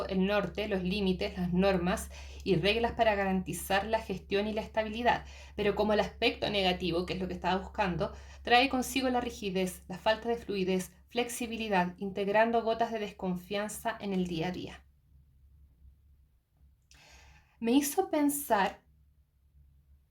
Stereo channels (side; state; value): both; identical; correlation 1.00